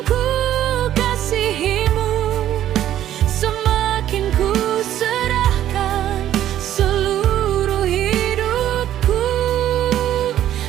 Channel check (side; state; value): left; quieter; 11.9 dB